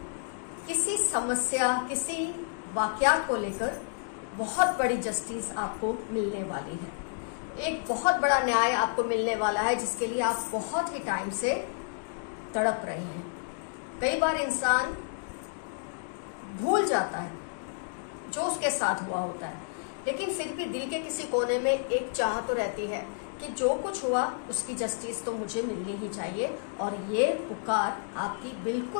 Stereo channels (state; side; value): silent; right; digital silence